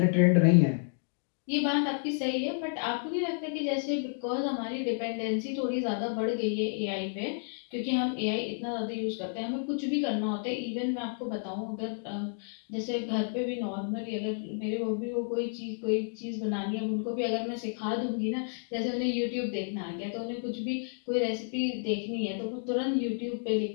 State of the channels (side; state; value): right; silent; digital silence